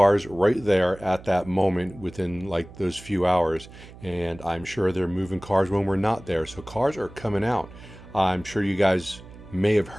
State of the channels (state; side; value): noise; right; hum, 18 dB below the sound